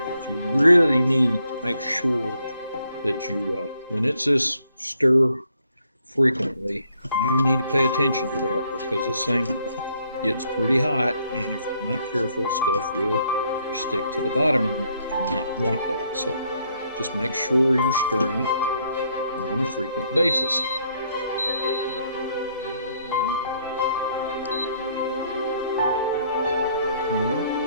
you really need to make sure that you, when it says stir frequently, you need to pay attention to that because this thing gets pretty hot, and if you're not careful, stuff will stick to the bottom, and you do not want that. So just make sure you're stirring it on a frequent basis.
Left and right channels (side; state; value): both; inverted; correlation -0.70